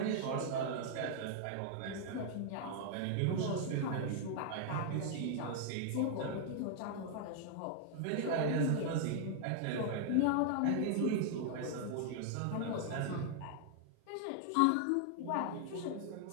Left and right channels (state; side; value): different; both; correlation 0.00